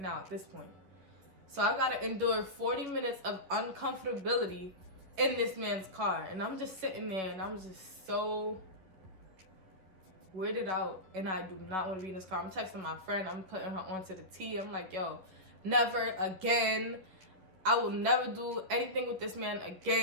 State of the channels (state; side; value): late; left; 11 ms